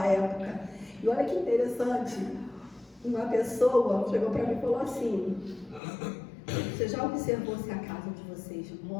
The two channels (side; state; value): right; drops out; at 5.8 s